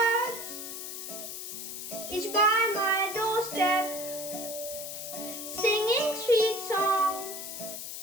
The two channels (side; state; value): left; noise; hiss, 7 dB below the sound